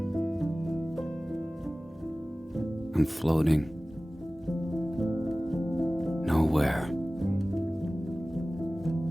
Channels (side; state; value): both; normal; correlation 0.97